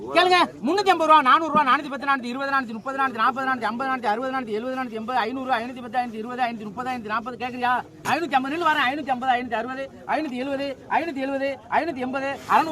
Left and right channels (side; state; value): both; identical; correlation 1.00